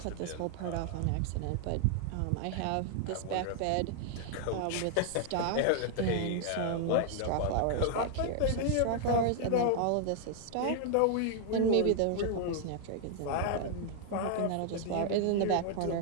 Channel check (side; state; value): both; different; correlation 0.00